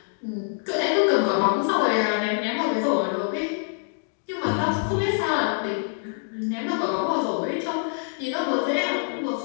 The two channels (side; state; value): right; silent; 62 dB below the other